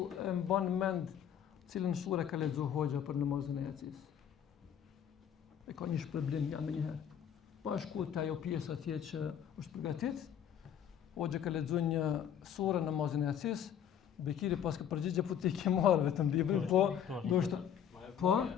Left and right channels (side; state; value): right; quieter; 9.0 dB